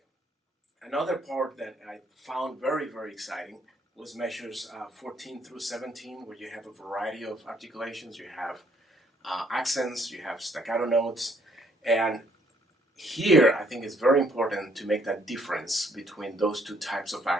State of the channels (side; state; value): both; normal; correlation 0.66